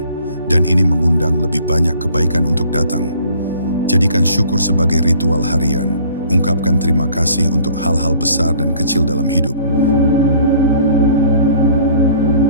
dan ini mengundang lebih banyak kebaikan untuk datang. Jadikan syukur sebagai ritual harian. Ungkapkan terima kasih untuk hal-hal besar dan kecil dalam hidup.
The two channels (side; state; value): both; inverted; correlation -0.54